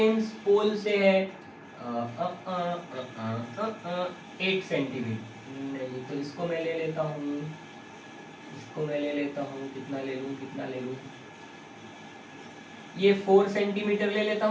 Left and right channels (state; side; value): identical; both; correlation 1.00